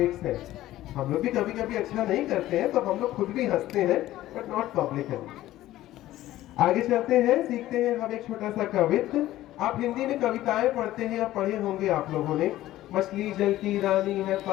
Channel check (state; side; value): quieter; right; 14.9 dB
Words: हैं, हम लोग भी कभी कभी अच्छा नहीं करते हैं तो हम लोग खुद भी हंसते हैं, बट नॉट पब्लिकली। आगे चलते हैं, सीखते हैं हम एक छोटा सा कवित्व। आप हिंदी में कविताएं पढ़ते हैं या पढ़े होंगे आप लोगों ने। मछली जल की रानी है,